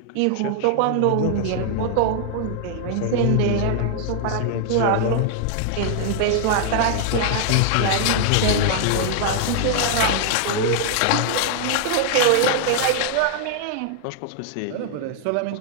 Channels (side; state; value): both; different; correlation 0.00